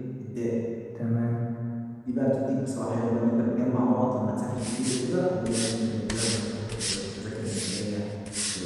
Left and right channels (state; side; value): identical; both; correlation 1.00